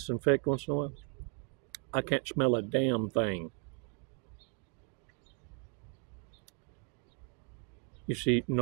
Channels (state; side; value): quieter; left; 37.5 dB